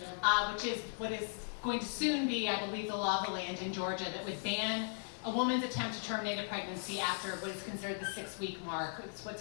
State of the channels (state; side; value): silent; right; 53 dB below the other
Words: which is what is going to soon be, I believe, the law of the land in Georgia that would ban a woman's attempt to terminate a pregnancy after what is considered the 6-week mark. It's